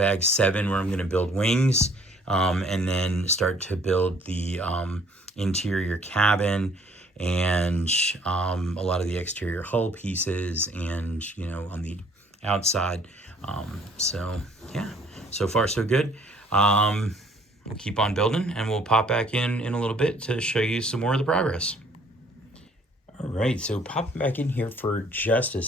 7, where I'm going to build wings, and then start to build the interior cabin and a lot of the exterior hull pieces and, on the outside. So, yeah. So far, so good. We'll keep on building, and we'll pop back in a little bit to show you some more of the progress. All right, so popping back in here for just a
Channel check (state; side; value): normal; both; correlation 0.59